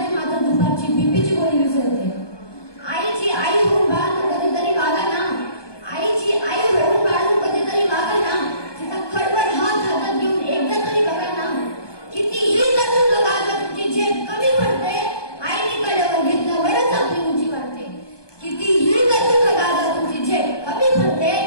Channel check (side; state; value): right; late; 1.2 ms